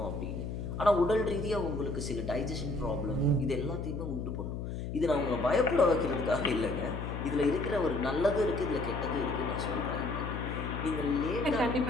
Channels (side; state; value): left; noise; hum, 5 dB below the sound